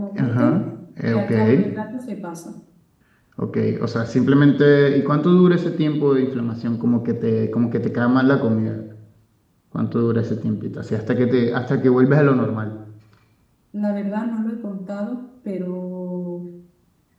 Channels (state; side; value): identical; both; correlation 1.00